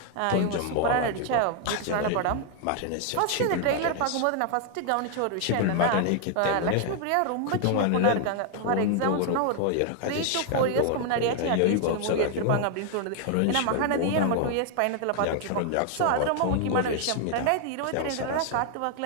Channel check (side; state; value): both; different; correlation 0.00